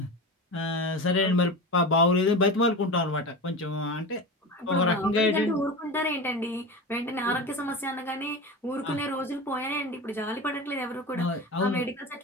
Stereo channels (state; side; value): normal; both; correlation 0.27